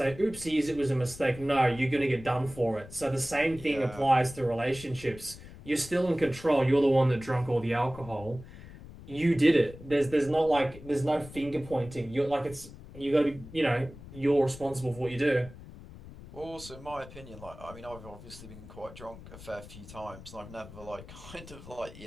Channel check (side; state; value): left; noise; rumble, 16 dB below the sound